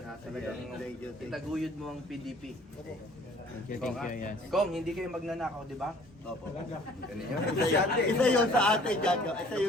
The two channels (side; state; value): both; normal; correlation 0.54